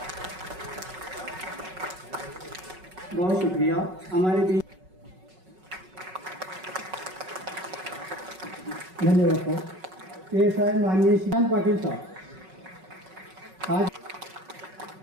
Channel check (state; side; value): late; left; 5.4 ms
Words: बहुत शुक्रिया। हमारे बीच धन्यवाद सर। PSI माननीय श्रीकांत पाटील साहब। आज